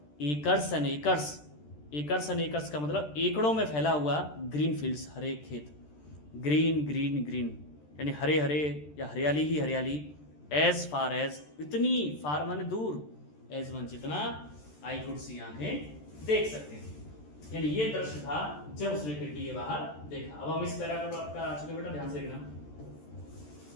acres and acres, acres and acres का मतलब एकड़ों में फैला हुआ, ग्रीन फील्ड्स, हरे खेत, ग्रीन ग्रीन ग्रीन यानी हरे हरे या हरियाली ही हरियाली, एज फार एज, इतनी, फार माने दूर, एज वन जितना, आई कुड सी, आंखें देख सकते थे। यानी ये दृश्य था जब उसने खिड़की के बाहर देखा। अब हम इस पैराग्राफ आपका आ चुके बेटा, ध्यान से देखना।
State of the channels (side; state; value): right; late; 13 ms